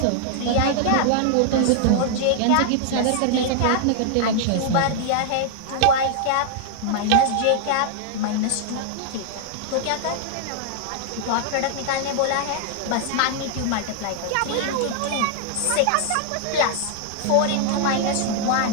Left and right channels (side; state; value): both; different; correlation 0.00